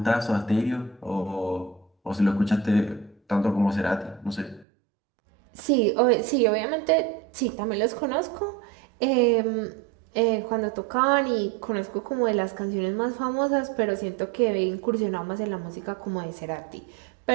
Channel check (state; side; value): drops out; left; at 4.7 s